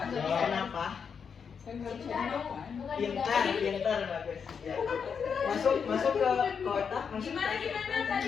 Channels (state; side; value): quieter; right; 6.5 dB